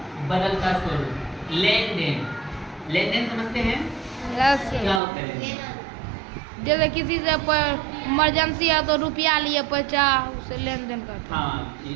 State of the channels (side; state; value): left; drops out; at 5.0 s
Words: बदलता स्वरूप। लेन देन, लेन देन समझते हैं? यस क्या होता है? जैसे किसी से इमरजेंसी है तो रुपया लिए पैसा उसे लेन देन करते हैं। हाँ,